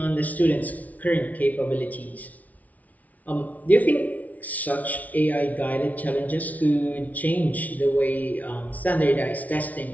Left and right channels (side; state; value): right; late; 0.072 ms